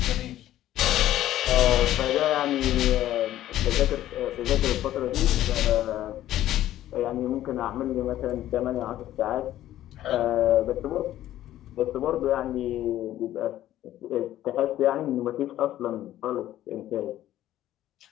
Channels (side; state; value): right; quieter; 13.3 dB